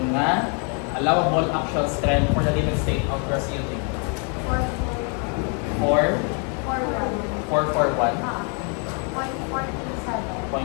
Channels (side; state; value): right; quieter; 39.0 dB